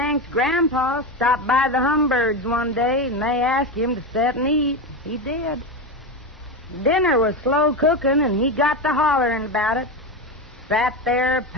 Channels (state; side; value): normal; both; correlation 0.16